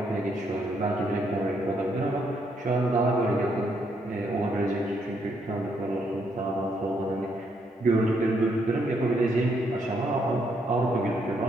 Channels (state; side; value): normal; both; correlation 0.74